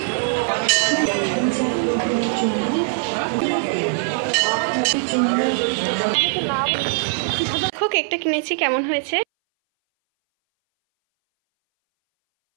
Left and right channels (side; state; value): left; silent; 61 dB below the other